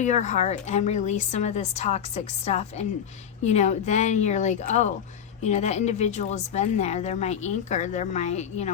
heart and release some of this toxic stuff. And, then you're like, oh, that individual has been there. They're my anchor. They're my,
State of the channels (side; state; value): right; quieter; 8.4 dB